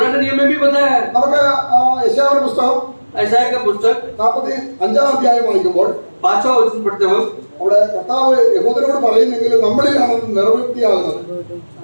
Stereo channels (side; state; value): both; inverted; correlation -1.00